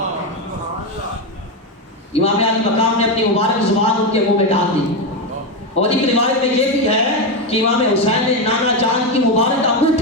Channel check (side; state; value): both; normal; correlation 0.10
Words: امام علی مقام نے اپنی مبارک زبان ان کے منہ میں ڈال دی. اور ایک روایت میں یہ بھی ہے کہ امام حسین نے نانا جان کی مبارک